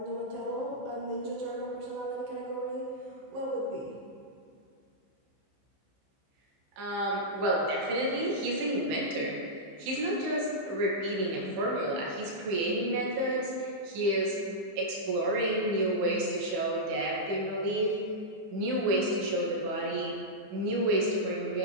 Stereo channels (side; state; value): left; late; 15 ms